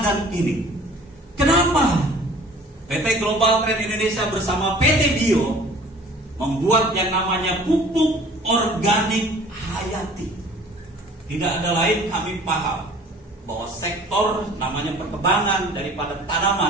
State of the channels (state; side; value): normal; both; correlation 0.49